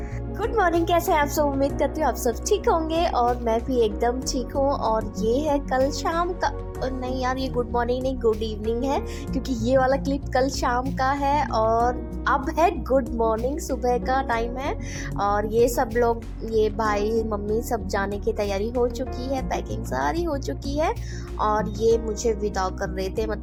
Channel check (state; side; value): identical; both; correlation 1.00